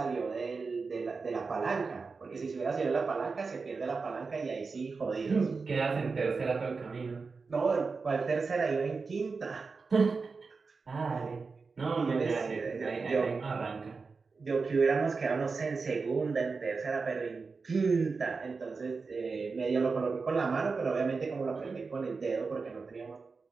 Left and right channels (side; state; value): left; quieter; 4.5 dB